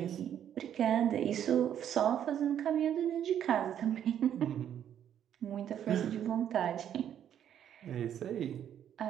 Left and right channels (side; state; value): left; quieter; 9.8 dB